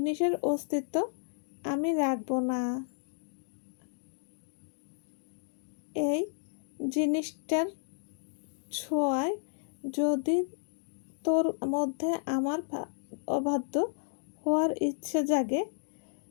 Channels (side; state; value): right; silent; digital silence